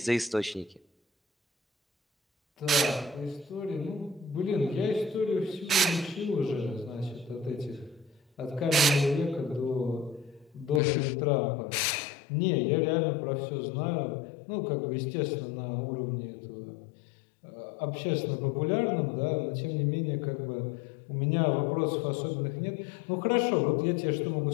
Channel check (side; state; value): right; drops out; at 10.8 s